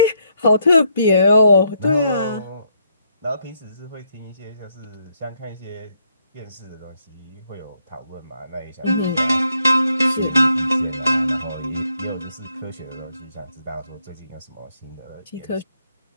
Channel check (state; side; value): inverted; both; correlation -0.75